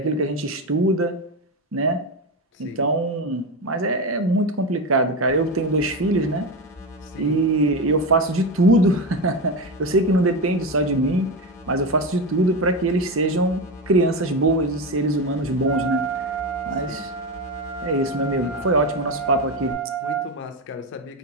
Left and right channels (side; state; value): both; normal; correlation 0.16